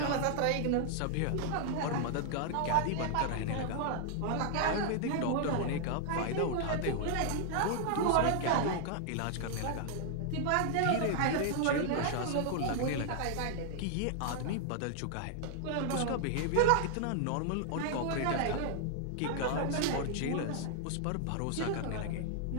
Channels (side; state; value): both; different; correlation -0.01